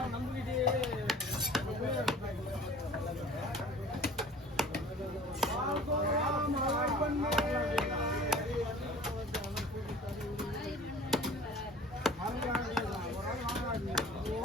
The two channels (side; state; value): both; normal; correlation 0.46